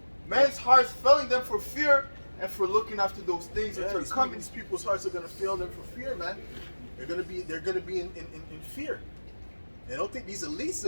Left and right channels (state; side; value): inverted; both; correlation -1.00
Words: Men's hearts failing them for fear, and for looking after those things that are coming. These people's hearts are gonna fail them for fear, man. They're gonna be in fear. And I don't think these elites,